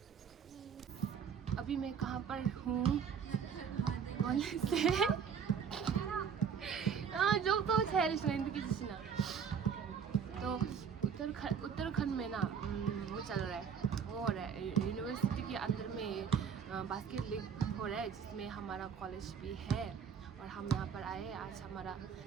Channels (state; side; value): quieter; left; 7.1 dB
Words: अभी मैं कहाँ पर हूँ? कॉलेज से जो तो तो उत्तराखंड में ना वो चल रहा है, वो हो रहा है यूनिवर्सिटी के अंदर में बास्केट लीग हो रहा है, जिसमें हमारा कॉलेज भी है और हम यहाँ पर आए हैं। आज हमारा